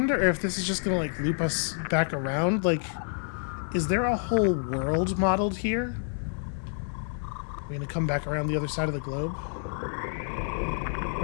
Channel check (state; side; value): silent; right; 59 dB below the other